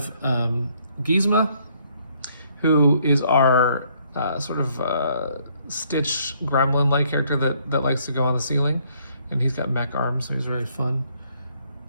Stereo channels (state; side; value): inverted; both; correlation -0.68